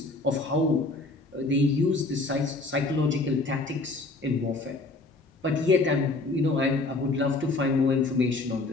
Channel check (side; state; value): right; quieter; 3.2 dB